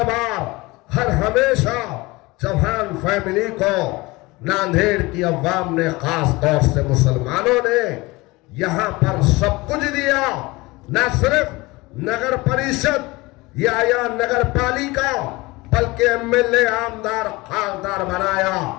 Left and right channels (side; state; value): right; quieter; 22.4 dB